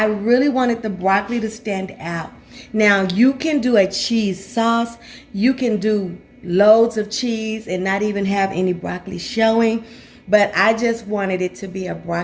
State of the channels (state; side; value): identical; both; correlation 1.00